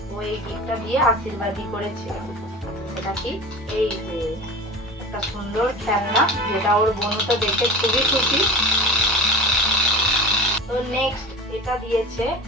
ও এই গিফটটা দিয়ে আশীর্বাদই করেছে। সেটা কি? এই যে একটা সুন্দর খেলনা, যেটা ওর বোন তো দেখে খুবই খুশি। তো নেক্সট এটা দিয়েছে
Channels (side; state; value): both; normal; correlation 0.34